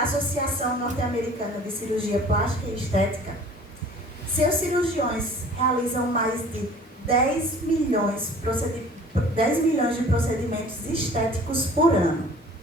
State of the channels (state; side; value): normal; both; correlation 0.48